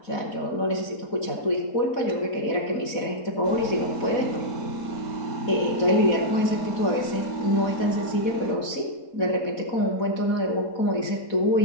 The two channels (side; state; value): right; late; 4.1 ms